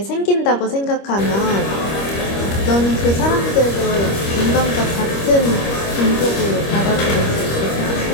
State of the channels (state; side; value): late; right; 25 ms